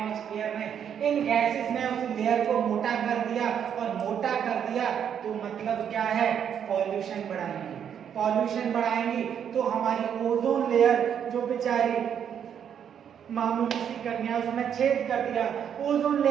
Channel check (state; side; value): quieter; left; 8.5 dB